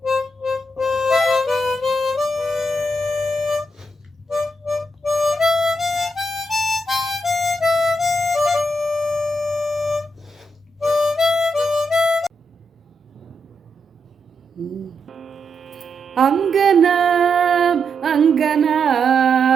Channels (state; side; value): normal; both; correlation 0.81